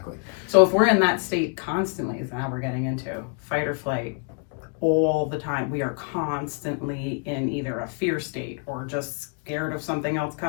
So if we're in that state constantly, is now we're getting into fight or flight all the time. We are constantly in either a fear state or just scared of something else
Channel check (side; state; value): right; quieter; 39.3 dB